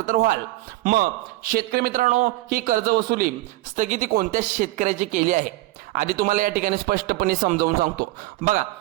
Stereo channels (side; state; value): left; quieter; 18.5 dB